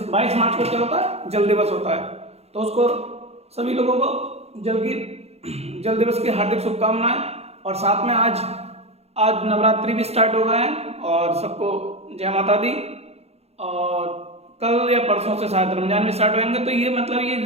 22 मार्च को क्या होता है? जल दिवस होता है। तो उसको सभी लोगों को जल दिवस की हार्दिक शुभकामनाएं। और साथ में आज नवरात्रि भी स्टार्ट हो गए हैं और सबको जय माता दी। और कल या परसों से शायद रमजान भी स्टार्ट होंगे। तो ये मतलब ये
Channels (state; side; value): late; left; 0.30 ms